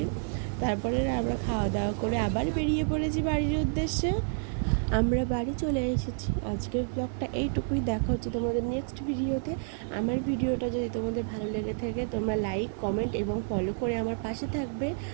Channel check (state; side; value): silent; left; digital silence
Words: তারপরে আমরা খাওয়া দাওয়া করে আবার বেরিয়ে পড়েছি বাড়ির উদ্দেশ্যে। আমরা বাড়ি চলে এসেছি। আজকের ব্লগটা এইটুকুই, দেখা হচ্ছে তোমাদের নেক্সট ভিডিওতে। আমার ভিডিওটা যদি তোমাদের ভালো লেগে থাকে, তোমরা লাইক, কমেন্ট এবং ফলো করে আমার পাশে থাকবে।